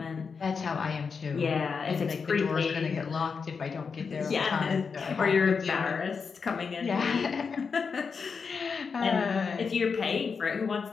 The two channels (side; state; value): right; quieter; 5.5 dB